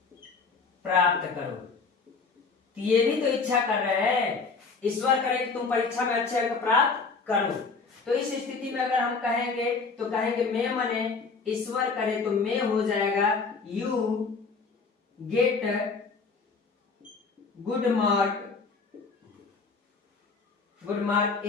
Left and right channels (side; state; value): right; quieter; 4.6 dB